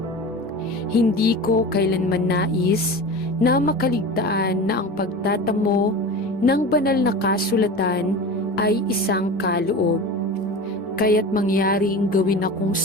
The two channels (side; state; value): both; normal; correlation 0.32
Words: Hindi ko kailanman nais na makaligtaan na ang pagtatamo ng banal na kasulatan ay isang kaloob. Kaya't mangyaring gawin akong